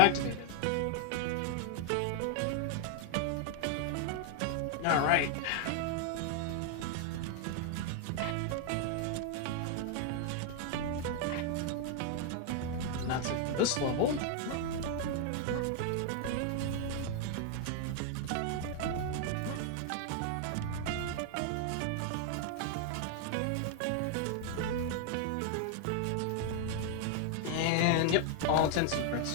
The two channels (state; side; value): different; both; correlation 0.00